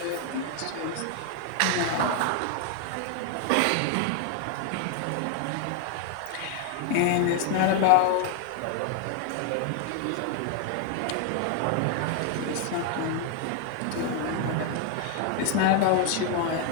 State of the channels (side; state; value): both; different; correlation 0.00